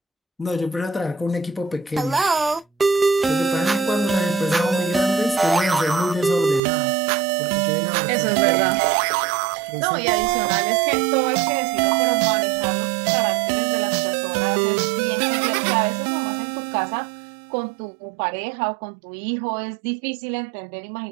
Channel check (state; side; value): drops out; left; at 6.6 s